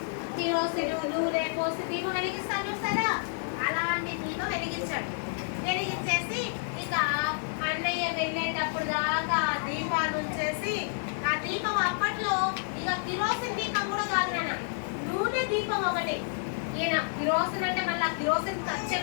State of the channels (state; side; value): silent; right; digital silence